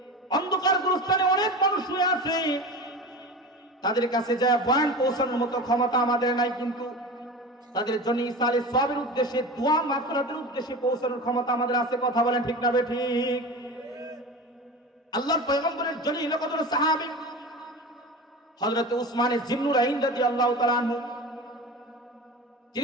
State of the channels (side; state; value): both; normal; correlation 0.31